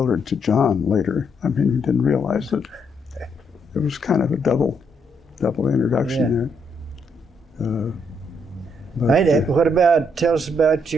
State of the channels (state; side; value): normal; both; correlation 0.74